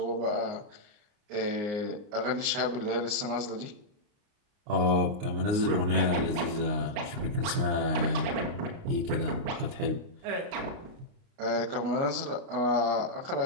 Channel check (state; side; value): late; left; 29 ms